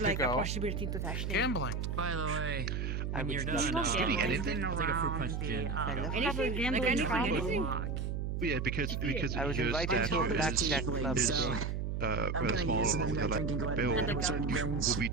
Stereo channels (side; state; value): right; noise; hum, 2 dB below the sound